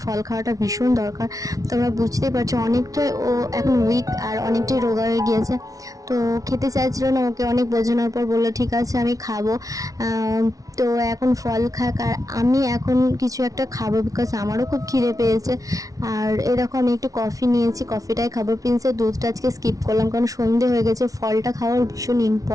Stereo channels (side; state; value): left; late; 0.17 ms